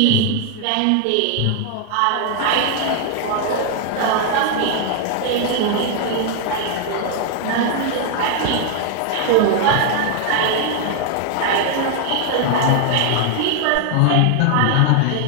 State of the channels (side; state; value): both; different; correlation 0.00